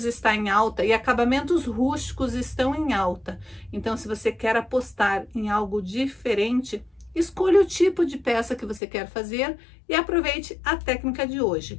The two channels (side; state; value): right; drops out; at 8.8 s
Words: está em alta e acabamentos rústicos estão em alta. Então, se você quer apostar em algo diferente, escolha o tipo de peça que você quer fazer e aproveite a técnica de